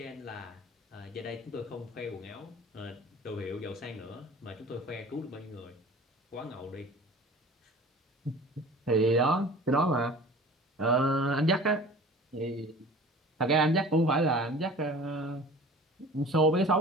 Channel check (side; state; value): both; normal; correlation 0.43